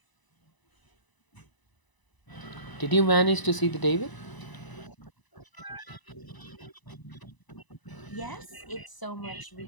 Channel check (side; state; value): right; late; 1.0 ms